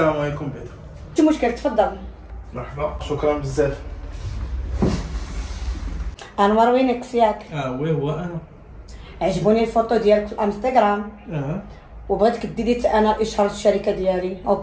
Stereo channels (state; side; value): identical; both; correlation 1.00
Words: عليكم بعدا. شي مشكل تفضل. مرحبا شكرا بزاف. انور وينك ياك؟ وي هو انا. عجبوني الفوتو ديالك في الانستغرام وبغيتك ديري انا الاشهار الشركه ديالي.